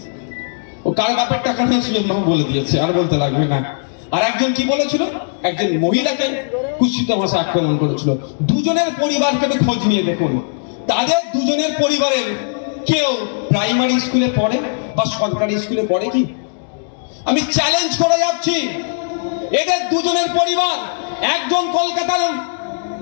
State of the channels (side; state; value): right; silent; digital silence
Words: ও কার বাপের টাকা নিয়ে সুজন বাবু বলে দিয়েছে, আর বলতে লাগবে না। আর একজন কি বলেছিল, একজন মহিলাকে কুৎসিত ভাষায় আক্রমণ করেছিল। দুজনের পরিবারকে একটু খোঁজ নিয়ে দেখুন, তাদের দুজনের পরিবারের কেউ প্রাইমারি স্কুলে পড়ে বা সরকারি স্কুলে পড়ে কি? আমি চ্যালেঞ্জ করে যাচ্ছি, এদের দুজনের পরিবার, একজন কলকাতার